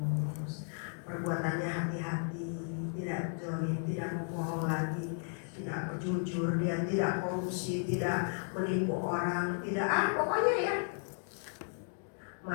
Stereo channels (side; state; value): right; silent; 55 dB below the other